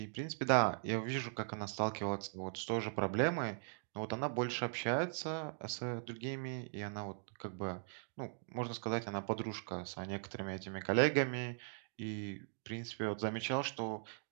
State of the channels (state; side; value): silent; left; digital silence